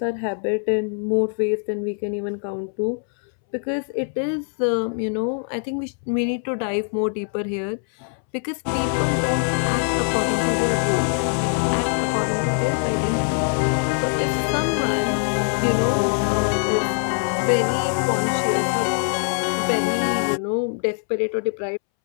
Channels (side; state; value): right; silent; 64 dB below the other